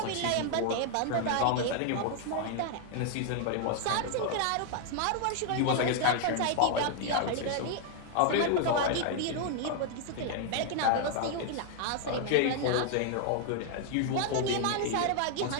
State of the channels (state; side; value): different; both; correlation 0.00